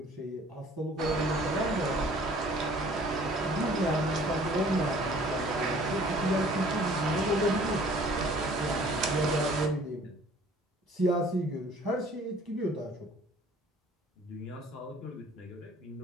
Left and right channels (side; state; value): both; normal; correlation 0.53